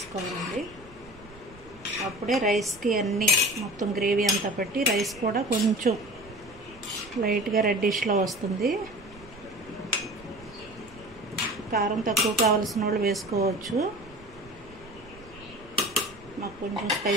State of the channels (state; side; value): noise; right; rumble, 22 dB below the sound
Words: అప్పుడే రైస్కి అన్నీ మొత్తం గ్రేవీ అంతా పట్టి రైస్ కూడా కొంచెం లైట్గా రెడ్డిష్లో వస్తుంది. కారం తక్కువ కావాల్సిన వాళ్ళు వేసుకోవచ్చు. మాకు కొంచెం